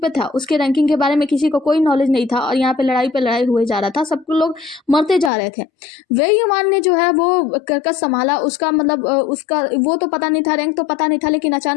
था, उसके रैंकिंग के बारे में किसी को कोई नॉलेज नहीं था और यहाँ पे लड़ाई हुए जा रहा था, सब लोग मरते जा रहे थे। वेई युवान ने जो है वो कर्कश संभाला, उसका मतलब उसका वो तो पता नहीं था, रैंक तो पता नहीं था, लेकिन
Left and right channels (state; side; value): drops out; right; at 5.3 s